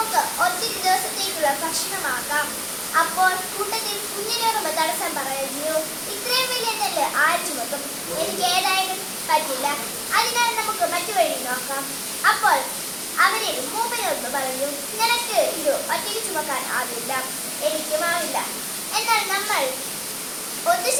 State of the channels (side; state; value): both; identical; correlation 1.00